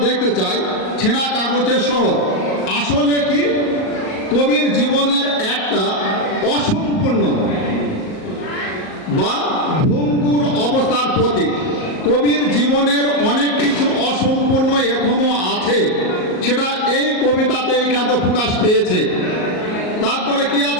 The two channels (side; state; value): right; late; 38 ms